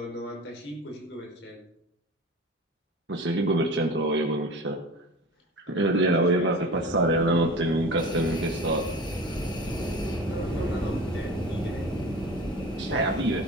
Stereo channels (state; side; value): normal; both; correlation 0.35